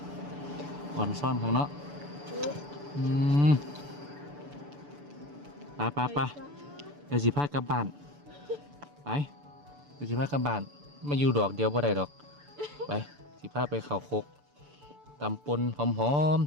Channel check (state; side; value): late; left; 6.9 ms